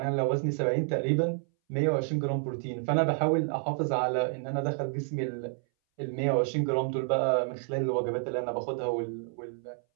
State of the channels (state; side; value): silent; left; 58 dB below the other